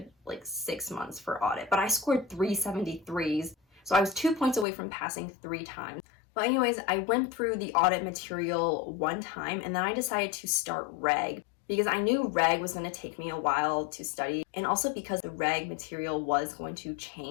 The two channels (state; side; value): drops out; right; at 4.7 s